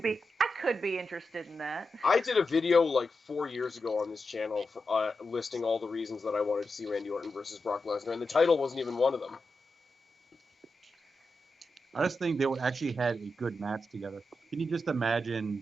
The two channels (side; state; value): both; normal; correlation 0.89